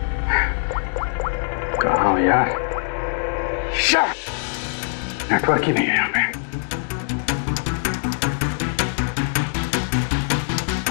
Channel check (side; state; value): right; silent; 60 dB below the other